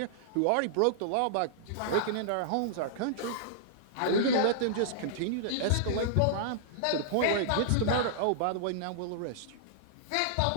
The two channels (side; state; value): both; different; correlation -0.01